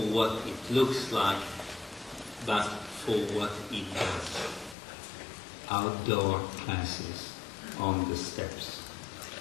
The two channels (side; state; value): right; drops out; at 4.8 s